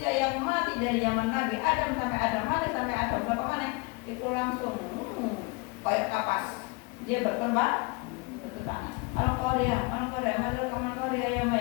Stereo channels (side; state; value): right; quieter; 28.2 dB